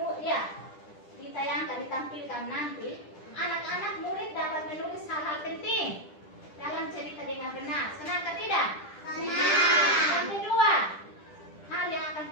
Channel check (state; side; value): late; right; 10 ms